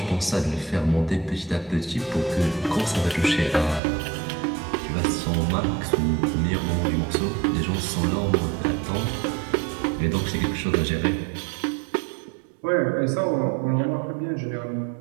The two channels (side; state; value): left; drops out; at 3.8 s